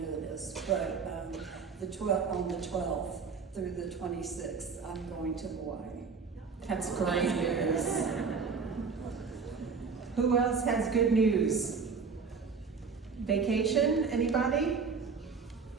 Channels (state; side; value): quieter; left; 5.3 dB